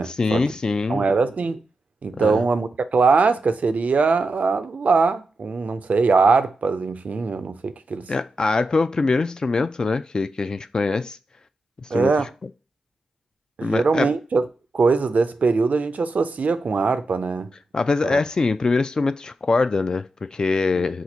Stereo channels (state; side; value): normal; both; correlation 0.87